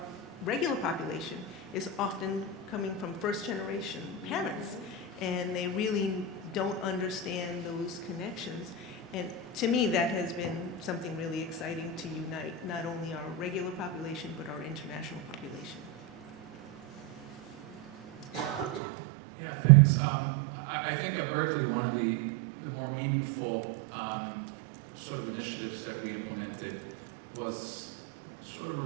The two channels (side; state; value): left; drops out; at 18.8 s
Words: regular population is often coming from first-generation parents, and they really don't understand those connections. And to me, that has been something really exciting to unite not only our regular population, but our international population. Yeah, thanks. I think at Berkeley, one of the more meaningful sort of initiatives that we implemented was sort of a